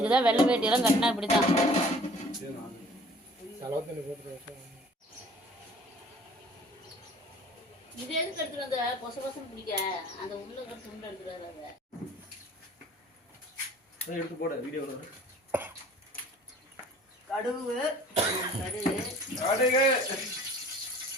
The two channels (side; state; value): both; normal; correlation 0.50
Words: தான் வெள்ளை வேட்டியெல்லாம் கட்டினா இப்படி தான். செலவு தண்ணி போட்டு இது எதுக்கு எடுத்துட்டு வந்த? பொச பொசம் பிடிக்க அந்த உள்ள துண்டு எடுத்துட்டு வர. அதை எடுத்து போட வீடியோ கடுகு கடுகு